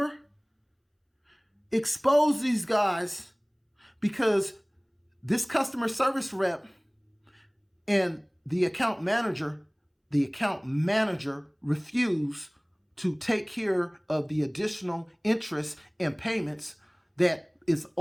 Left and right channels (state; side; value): identical; both; correlation 1.00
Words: Expose these guys, because this customer service rep and the account manager refused to take care of the additional interest and payments that is